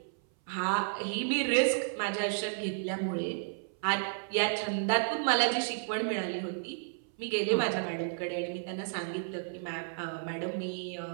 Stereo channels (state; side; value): silent; left; 56 dB below the other